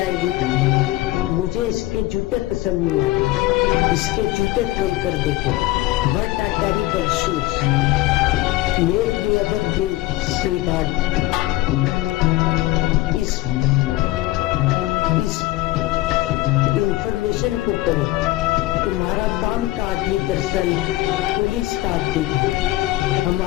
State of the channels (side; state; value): right; quieter; 17.7 dB